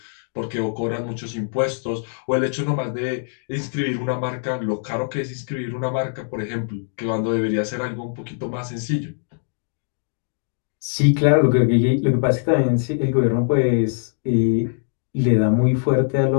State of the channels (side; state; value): right; silent; digital silence